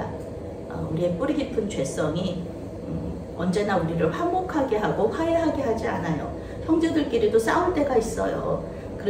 우리의 뿌리 깊은 죄성이 언제나 우리를 화목하게 하고 화해하게 하지 않아요. 형제들끼리도 싸울 때가 있어요.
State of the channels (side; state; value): both; identical; correlation 1.00